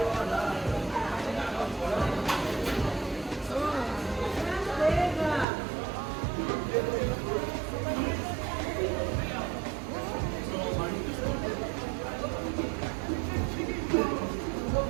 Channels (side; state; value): left; drops out; at 5.5 s